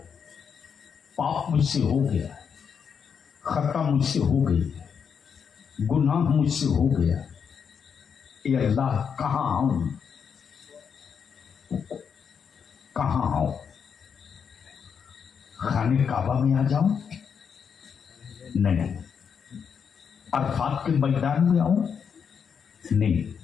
पाप मुझसे हो गया, खता मुझसे हो गई, गुनाह मुझसे हो गया। ए अल्लाह, कहां आऊं, कहां आऊं? खाने काबा में आ जाऊं? नहीं। अरफात के मैदान में आऊं? नहीं।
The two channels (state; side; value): quieter; right; 6.9 dB